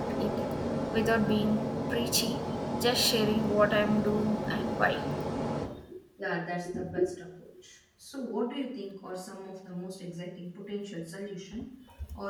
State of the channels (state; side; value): identical; both; correlation 1.00